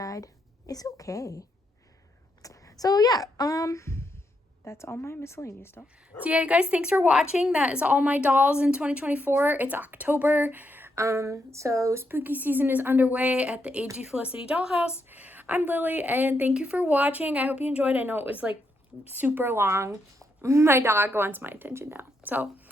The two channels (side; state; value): both; normal; correlation 0.80